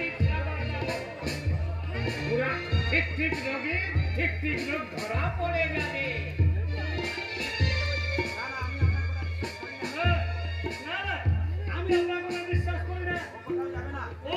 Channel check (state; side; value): identical; both; correlation 1.00